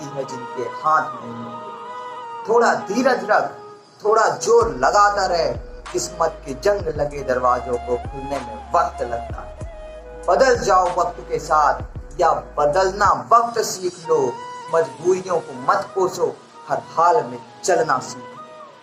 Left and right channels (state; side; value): identical; both; correlation 1.00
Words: है जिनके हाथ नहीं होते। थोड़ा धीरज रख, थोड़ा जोर लगाता रहे, किस्मत के जंग लगे दरवाजों को खुलने में वक्त लगता है। बदल जाओ वक्त के साथ, या बदलना वक्त सीख लो। मजबूरियों को मत कोसो, हर हाल में चलना